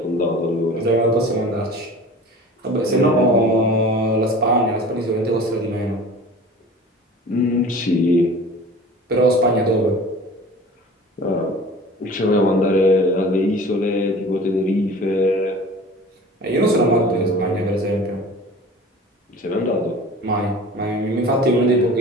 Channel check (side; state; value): both; normal; correlation 0.41